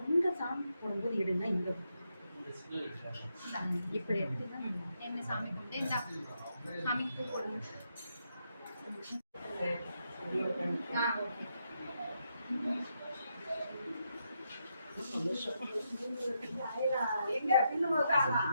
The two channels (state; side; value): inverted; both; correlation -0.81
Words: சாமி போடும்போது எடுங்க இங்க இப்படி எடுத்துதான் என்ன சாமி கும்பிட்டு இந்த சாமிக்கு போடுங்க.